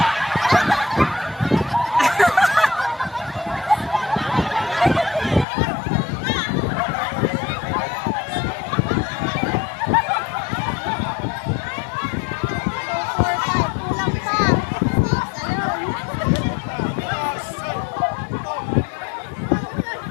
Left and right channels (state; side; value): drops out; right; at 5.5 s